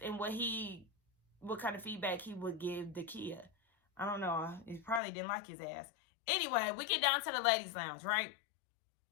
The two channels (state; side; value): drops out; right; at 5.0 s